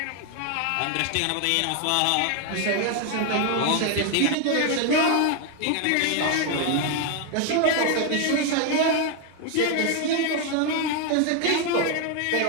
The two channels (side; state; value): both; different; correlation 0.01